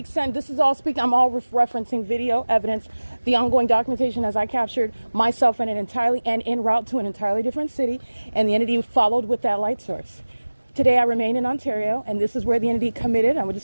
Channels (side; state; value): both; inverted; correlation -1.00